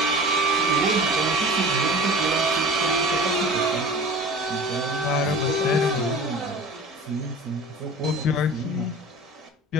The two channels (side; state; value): both; normal; correlation 0.39